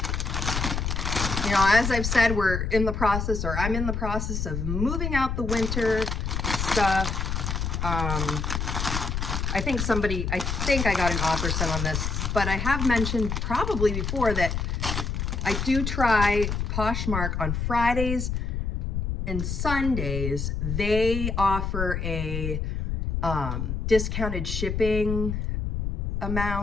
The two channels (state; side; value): noise; left; rumble, 2 dB below the sound